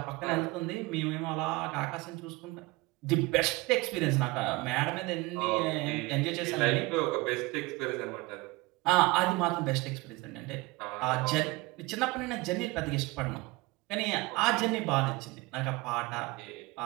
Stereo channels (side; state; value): left; quieter; 23.0 dB